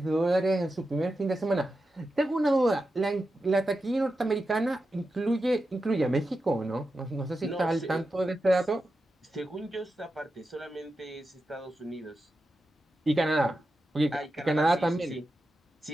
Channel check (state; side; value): normal; both; correlation 0.90